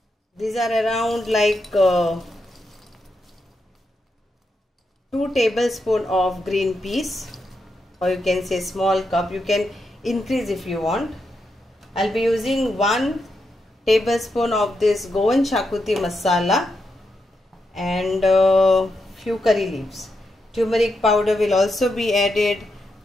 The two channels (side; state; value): both; normal; correlation 0.84